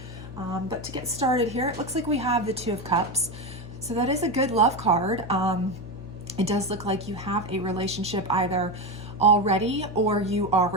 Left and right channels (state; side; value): noise; left; hum, 15 dB below the sound